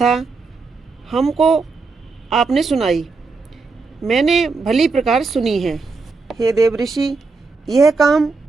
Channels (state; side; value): quieter; left; 4.2 dB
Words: हमको आपने सुनाई, मैंने भली प्रकार सुनी है। हे देव ऋषि, यह काम